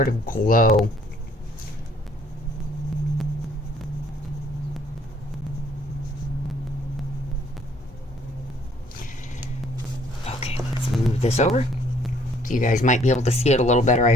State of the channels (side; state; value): both; normal; correlation 0.62